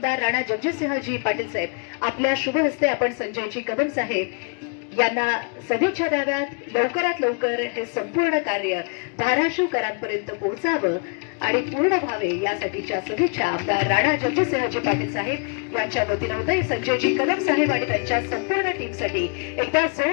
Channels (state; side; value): quieter; right; 39.5 dB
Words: राणा जगजितसिंहजी पाटील साहेब आपल्या शुभ हस्ते आपण संजयजी कदम साहेब यांना सदिच्छा द्याव्यात. लवकरात लवकर हे संपूर्ण कार्य धाराशिवकरांपर्यंत पोहोचावं आणि पूर्ण व्हावे यासाठीच्या सदिच्छा आमदार राणा जगजितसिंहजी पाटील साहेब यांच्या वतीनं होते. संजयजी कदम साहेब आणि त्यांच्या संपूर्ण टीमसाठी एकदा